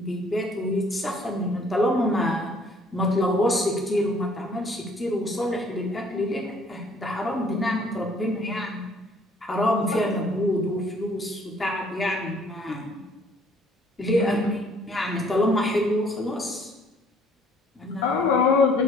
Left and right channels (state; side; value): normal; both; correlation 0.59